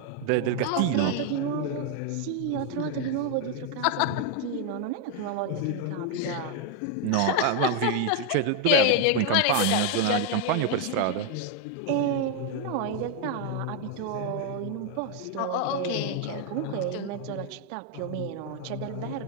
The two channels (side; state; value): both; different; correlation 0.01